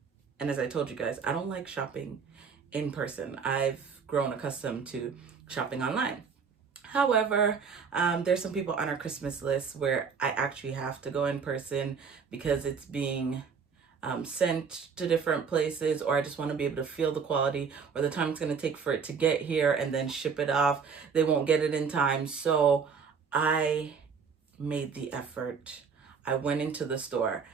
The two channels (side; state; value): left; quieter; 5.9 dB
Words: and as I told you guys, I don't like shopping in person. I've grown accustomed to shopping online. However, there's some people on our Christmas list where I actually have to go in person because it's being sent to different places, or I just want to be able to feel the quality or the time it's going to take for it to get here and then ship it off. They won't get it in time. So I made the effort. I went into the store